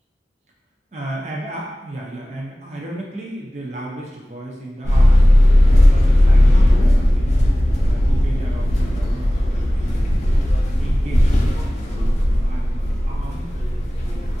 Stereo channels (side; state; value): both; normal; correlation 0.98